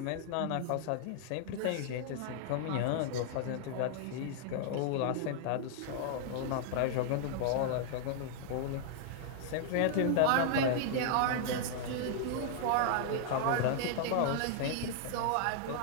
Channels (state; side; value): different; both; correlation -0.01